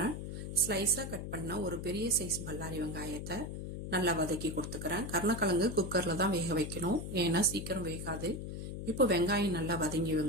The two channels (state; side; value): noise; left; hum, 6 dB below the sound